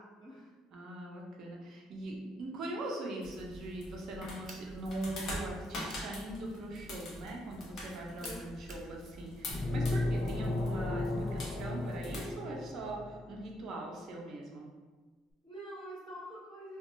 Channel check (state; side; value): normal; both; correlation 0.77